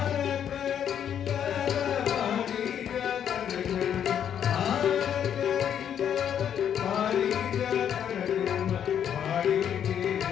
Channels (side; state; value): right; quieter; 9.1 dB